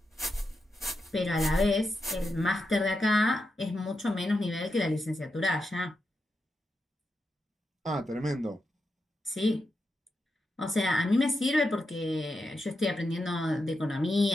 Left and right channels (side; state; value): both; normal; correlation 0.87